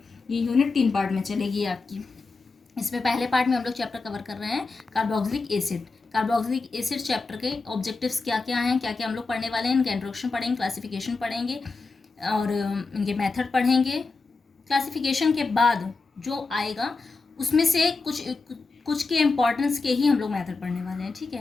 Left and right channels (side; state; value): right; quieter; 4.0 dB